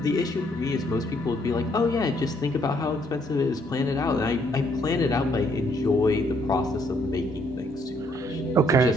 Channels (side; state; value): both; normal; correlation 0.69